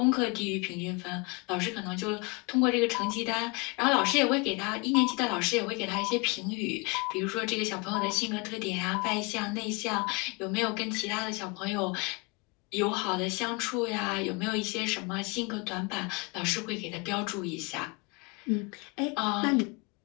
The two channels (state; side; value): quieter; right; 29.5 dB